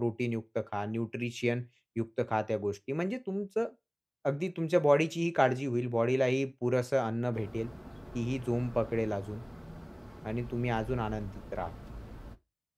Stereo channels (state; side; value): identical; both; correlation 1.00